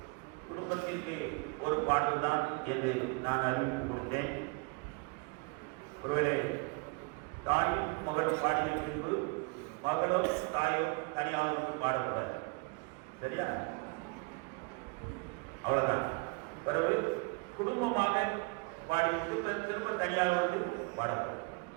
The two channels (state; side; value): quieter; left; 30.6 dB